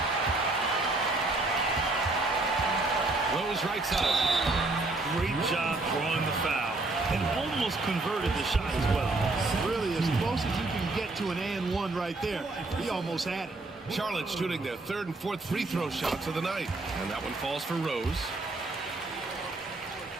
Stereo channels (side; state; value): left; quieter; 3.1 dB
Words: Rose right side. Great job almost converted the shot as well. Really, as close as you can get to an and one right there. He almost had it. Charlotte shooting their third and fourth free throw shots of the night. And that one falls for Rose.